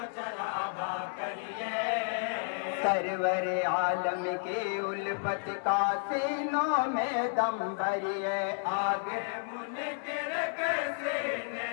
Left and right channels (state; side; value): silent; right; 57 dB below the other